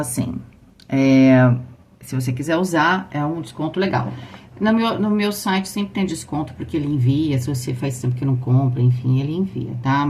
se você quiser usar, é um desconto legal. No meu site sempre tem desconto, porque ele envia. Se você faz tempo que não compra, enfim, ele envia, tá?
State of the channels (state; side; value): identical; both; correlation 1.00